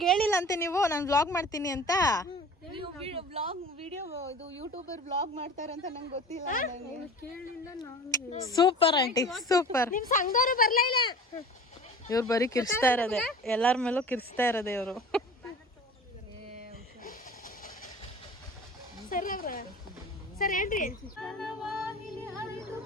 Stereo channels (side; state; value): both; normal; correlation 0.39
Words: ಹೇಳಿಲ್ಲ ಅಂತೆ ನೀವು ನಾನು ವ್ಲಾಗ್ ಮಾಡ್ತೀನಿ ಅಂತ? ಯೂಟ್ಯೂಬರ್ ವ್ಲಾಗ್ ಮಾಡ್ತಾರೆ ಅಂತ ನಂಗೆ ಗೊತ್ತಿಲ್ಲ. Super aunty super. ನಿಮ್ ಸಂಘದವರು ಬರ್ಲೇ ಇಲ್ಲ. ಇವ್ರು ಬರೀ ಕಿರ್ಸ್ತಾ ಇರೋದೆ, ಎಲ್ಲರ ಮೇಲೂ ಕಿರ್ಸ್ತಾ ಇರೋದೆ ಇವರು.